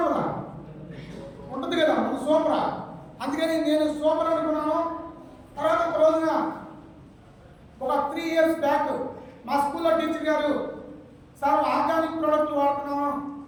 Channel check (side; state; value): both; identical; correlation 1.00